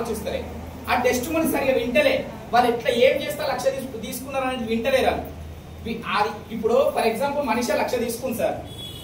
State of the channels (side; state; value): both; identical; correlation 1.00